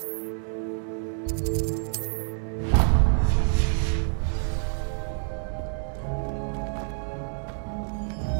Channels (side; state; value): left; silent; 60 dB below the other